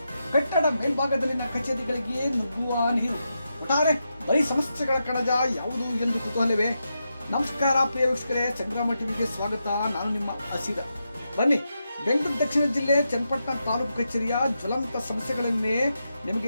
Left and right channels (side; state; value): both; inverted; correlation -0.86